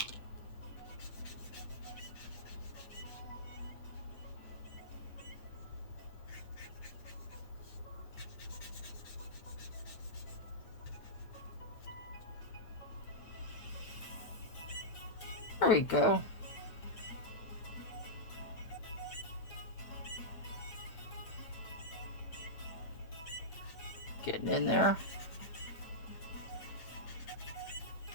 There we go. Getting in there.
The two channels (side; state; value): right; late; 8.9 ms